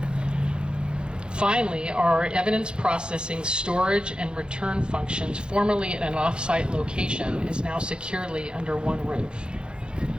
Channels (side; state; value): left; late; 0.051 ms